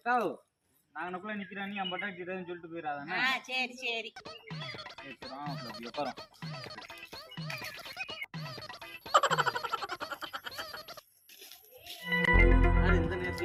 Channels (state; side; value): identical; both; correlation 1.00